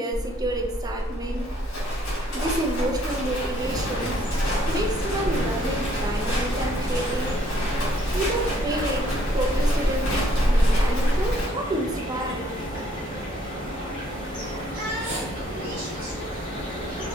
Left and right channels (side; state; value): both; normal; correlation 0.64